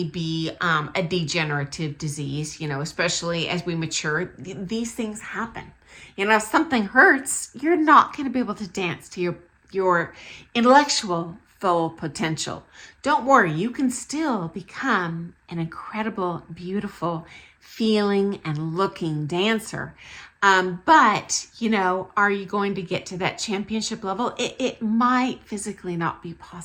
be a degenerative disease, especially as we mature. These things happen. If something hurts, you're not going to be able to dance to your intellectual full potential. Don't worry, you can still become an incredible, beautiful, feeling and looking dancer. But, are you going to get to that championship level? It might physically not be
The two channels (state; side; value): identical; both; correlation 1.00